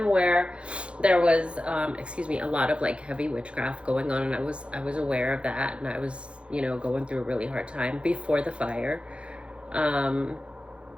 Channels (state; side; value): late; left; 0.059 ms